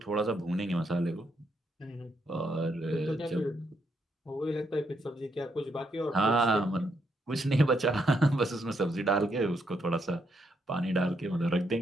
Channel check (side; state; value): both; normal; correlation 0.77